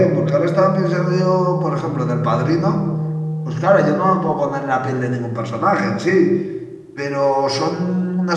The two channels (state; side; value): identical; both; correlation 1.00